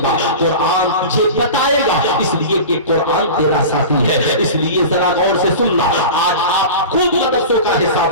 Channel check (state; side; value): inverted; both; correlation -0.32